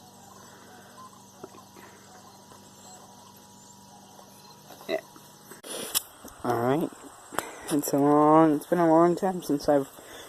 Yeah. Alright. It's been a long time since I've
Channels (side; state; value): both; identical; correlation 1.00